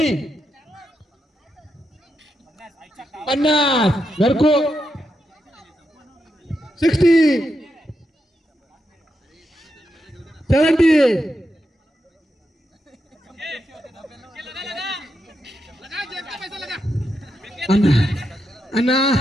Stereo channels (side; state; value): both; normal; correlation 0.84